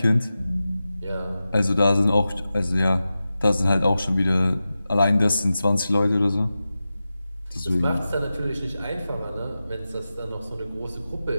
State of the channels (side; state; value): both; inverted; correlation -0.93